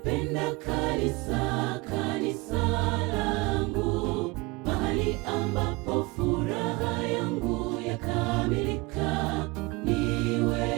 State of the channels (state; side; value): quieter; left; 24.2 dB